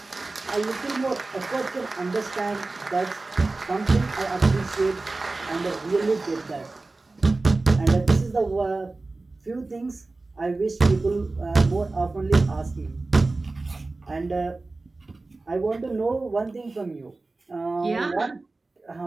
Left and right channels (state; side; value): quieter; left; 3.3 dB